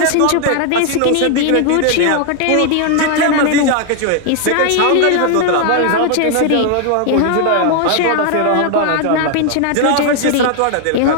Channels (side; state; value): both; different; correlation 0.00